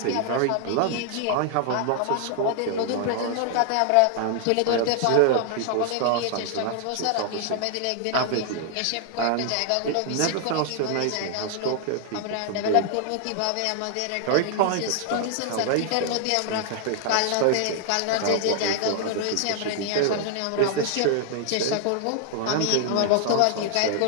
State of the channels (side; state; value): both; different; correlation 0.00